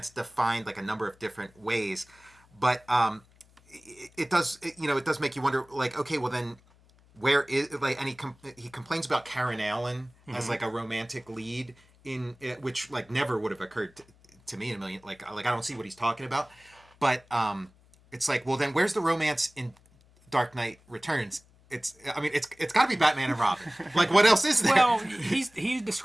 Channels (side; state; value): left; noise; hum, 29 dB below the sound